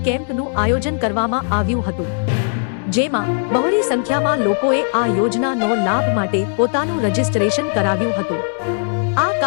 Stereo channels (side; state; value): right; silent; 67 dB below the other